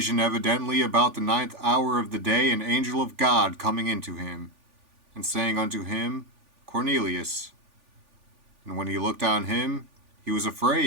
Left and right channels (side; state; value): left; late; 3.4 ms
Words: evidently about the ninth hour of the day an angel of God coming into him, and saying unto him, Cornelius. And when he looked on him, he was